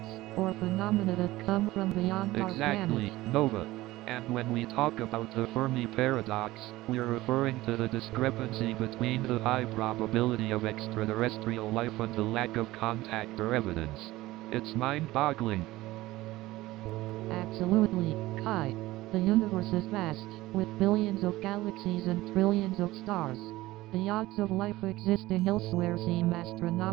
or phenomena that come from beyond our Exactly, planet. Nova. And when we talk about the Fermi paradox, we're referring to the discrepancy between the high probability of extraterrestrial life and the lack of contact or evidence. It's mind-boggling. Absolutely, Kai. The universe is vast, with billions of galaxies and trillions of stars. The odds of life existing elsewhere seem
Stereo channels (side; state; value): left; quieter; 17.8 dB